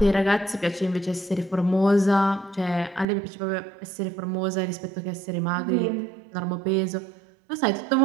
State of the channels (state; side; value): drops out; left; at 3.1 s